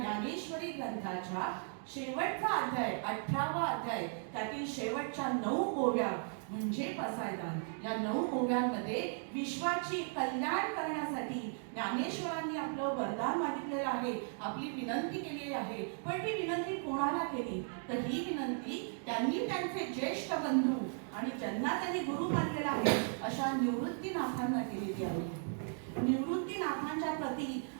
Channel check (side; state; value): left; silent; 53 dB below the other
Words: ग्रंथाच्या शेवटचा अध्याय 18वा अध्याय, त्यातील शेवटच्या 9 ओव्या म्हणजे पसायदान. या 9 ओव्यांमध्ये विश्वाची कल्याण करण्यासाठी ज्ञानेश्वरांनी आपलं वरदान मागितलेलं आहे, आपली विनंती केलेली आहे. पण ती विनंती कोणाला केली तर ही विनंती त्यांनी त्यांचे ज्येष्ठ बंधू आणि ज्यांना त्यांनी गुरु मानलेला आहे अशा निवृत्तीनाथांना केलेली आहे. निवृत्तीनाथांच्या प्रती